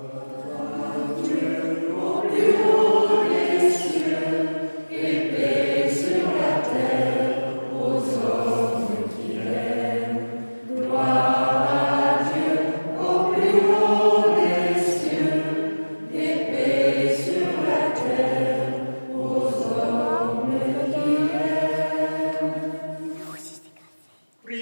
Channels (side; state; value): both; inverted; correlation -1.00